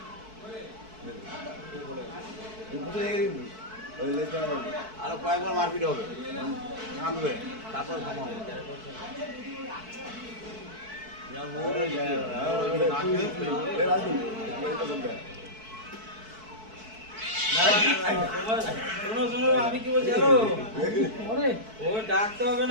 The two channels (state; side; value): late; left; 4.6 ms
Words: বুঝলি আরো কয়েকবার মারপিট হবে থামবে তারপর থামাবো আমি কি বলছি হ্যালো ও ডাকতে হবে